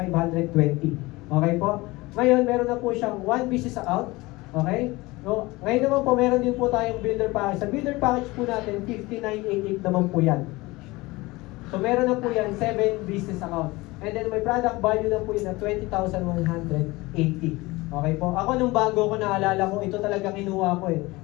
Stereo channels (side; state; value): right; quieter; 21.6 dB